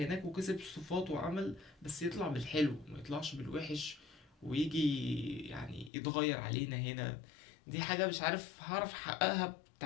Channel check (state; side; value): drops out; right; at 5.9 s